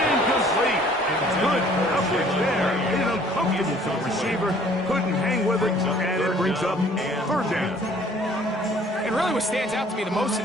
And good coverage there. Made it uncomfortable for the receiver. Couldn't hang with it, and it brings up third down. And really what stands out to me the most in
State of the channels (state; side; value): normal; both; correlation 0.56